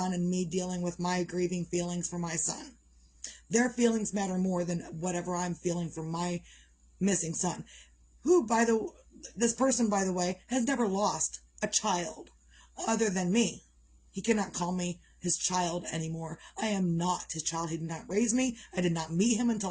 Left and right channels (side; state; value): both; identical; correlation 1.00